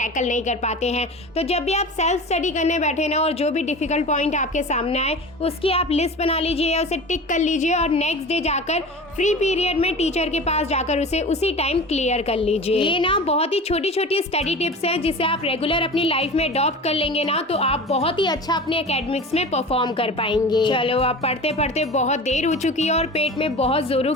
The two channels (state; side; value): normal; both; correlation 0.34